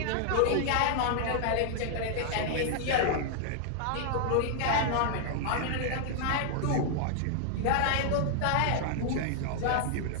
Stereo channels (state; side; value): different; both; correlation -0.01